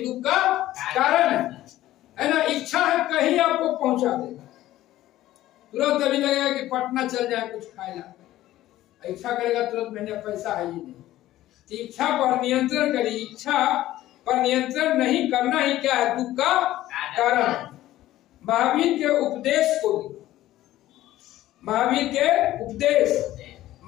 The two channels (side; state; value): right; quieter; 14.7 dB